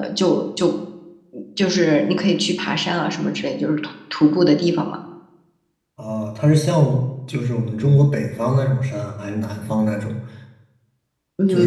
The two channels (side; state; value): both; identical; correlation 1.00